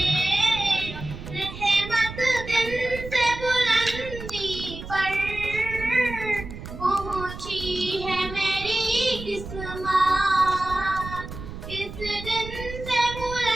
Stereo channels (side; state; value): right; noise; rumble, 11 dB below the sound